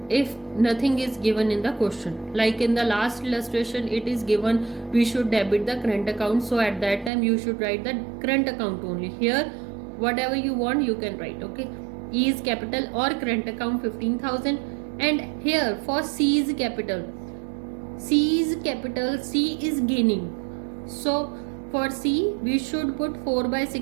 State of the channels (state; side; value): drops out; left; at 7.1 s